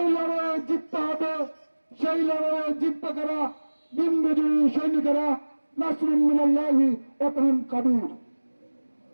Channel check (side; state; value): both; inverted; correlation -1.00